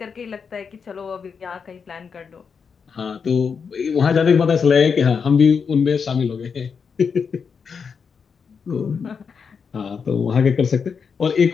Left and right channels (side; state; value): right; quieter; 6.0 dB